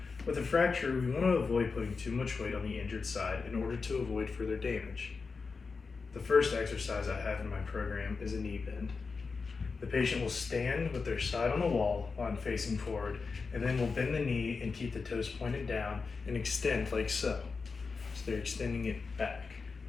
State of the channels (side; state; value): right; quieter; 4.7 dB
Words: With a fracture, we want to avoid putting too much weight on the injured side in order to avoid further damage. The first exercise I have in my program is a knee bend. The patient will stand with their side on the wall while I'm facing forward, and then will bend the knee and keep the toes pointed down and extend like so. So they're extending it back.